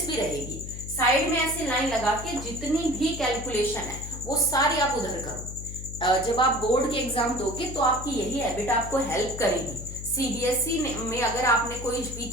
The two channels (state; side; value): noise; left; hum, 9 dB below the sound